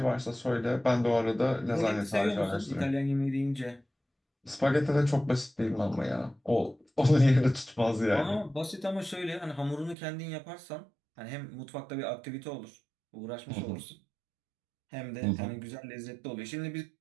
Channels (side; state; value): left; drops out; at 10.0 s